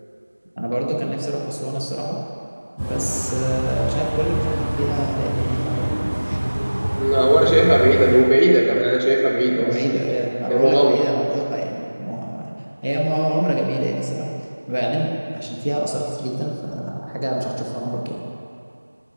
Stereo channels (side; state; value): both; inverted; correlation -1.00